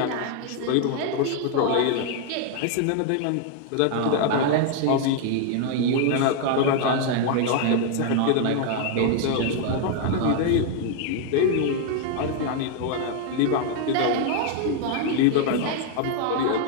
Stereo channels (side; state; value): both; different; correlation 0.00